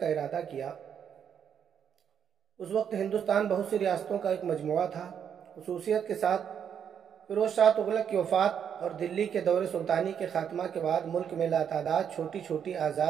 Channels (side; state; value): left; quieter; 8.1 dB